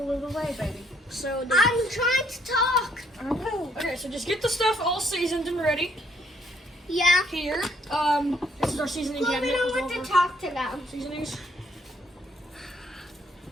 of the way, baby. So I'm trying to talk. I know. okay, so just get the stuff all seasoned and ready Yeah. here. This is our seasoning Well, we cabinet. don't with want all to of our talk to them. seasonings.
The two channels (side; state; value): both; normal; correlation 0.69